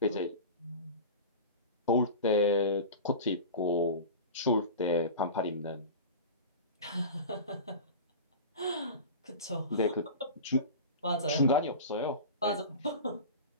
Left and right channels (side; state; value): both; inverted; correlation -0.31